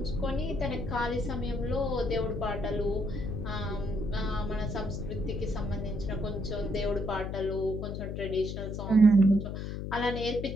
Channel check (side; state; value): left; noise; hum, 5 dB below the sound